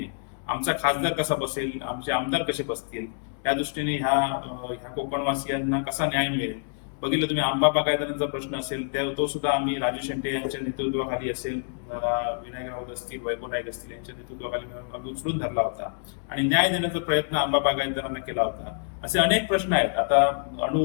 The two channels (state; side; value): silent; right; 60 dB below the other